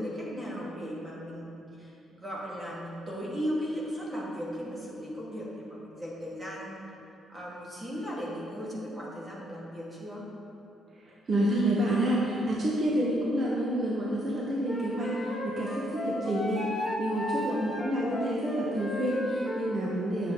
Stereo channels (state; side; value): normal; both; correlation 0.73